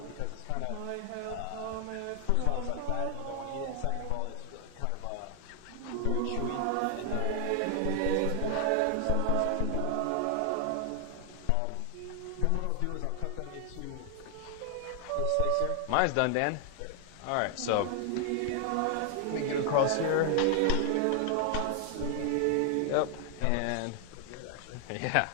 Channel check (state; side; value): different; both; correlation 0.00